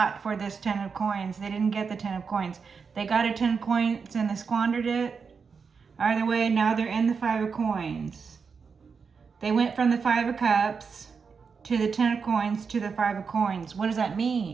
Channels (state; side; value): quieter; left; 5.6 dB